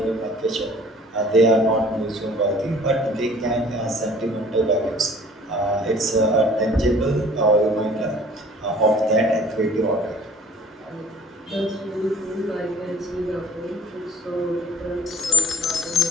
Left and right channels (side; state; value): both; normal; correlation 0.52